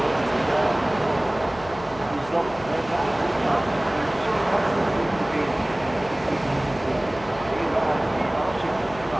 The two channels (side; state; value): left; noise; hum, 18 dB below the sound